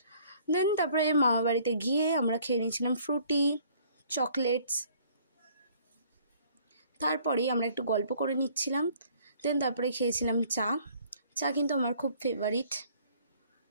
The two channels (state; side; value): inverted; both; correlation -0.58